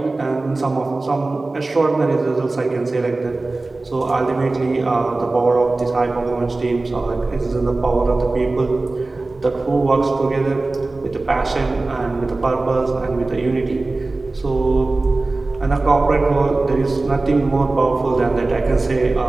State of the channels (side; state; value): left; quieter; 3.2 dB